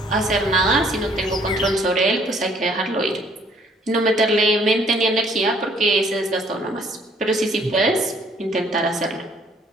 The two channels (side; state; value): both; normal; correlation 0.62